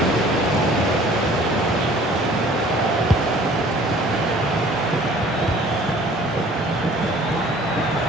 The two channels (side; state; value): both; normal; correlation 0.52